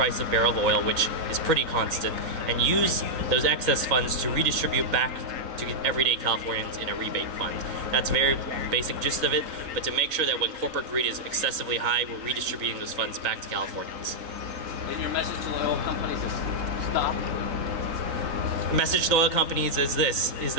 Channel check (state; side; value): late; left; 4.0 ms